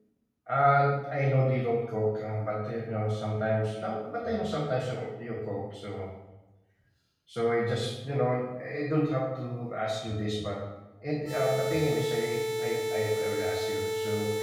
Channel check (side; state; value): both; identical; correlation 1.00